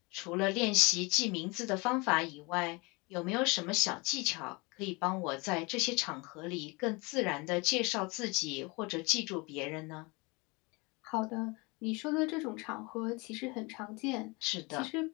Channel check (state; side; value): quieter; right; 27.0 dB